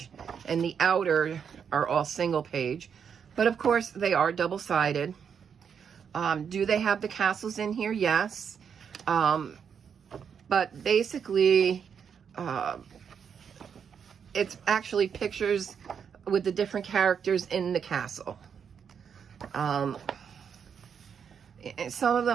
and the outer are all single page, but of course they are double-sided. Do they have the castles in here? Yes. But basically it's actually pictures with the different characters in the castle. Some of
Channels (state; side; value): quieter; left; 7.2 dB